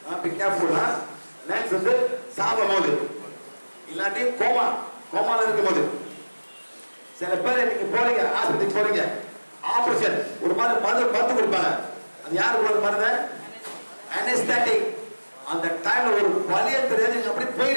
Be careful. Next வந்து சாகும் போது இல்லாட்டி கோமால இருக்கும்போது சில பேர் நீங்க போறீங்க ஆஸ்பத்திரிக்கு போறீங்க, ஆபரேஷன் ஒரு மாதிரி மருந்து கொடுப்பாங்க. அது யாரு கொடுக்குற மருந்து? அனஸ்தெட்டிக். அந்த டைம்ல ஒரு வலிய தெரியாது, நீங்க அப்படி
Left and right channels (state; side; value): inverted; both; correlation -1.00